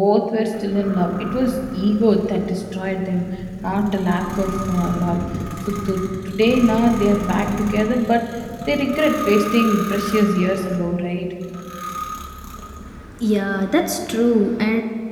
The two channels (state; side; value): identical; both; correlation 1.00